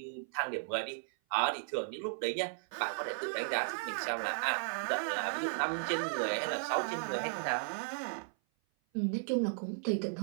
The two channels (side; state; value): left; silent; 54 dB below the other